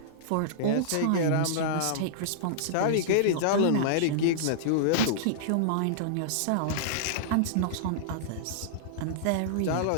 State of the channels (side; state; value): both; different; correlation -0.02